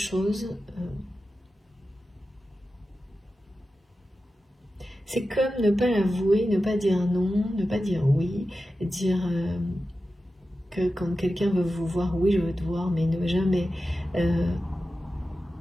c'est comme ne pas l'avouer, ne pas dire non, ne pas dire oui, dire que quand quelqu'un veut vous voir, oui je veux te voir, mais ne jamais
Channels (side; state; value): both; normal; correlation 0.93